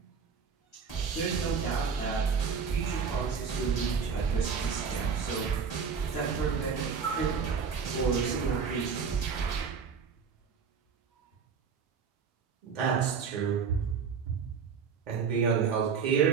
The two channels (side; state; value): left; quieter; 6.1 dB